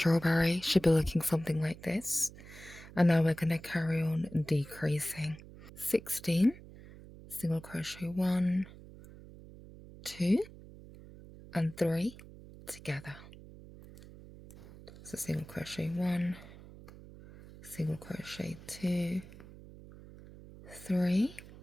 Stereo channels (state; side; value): noise; right; hum, 18 dB below the sound